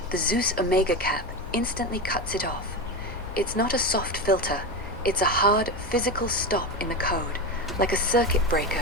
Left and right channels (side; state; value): both; normal; correlation 0.18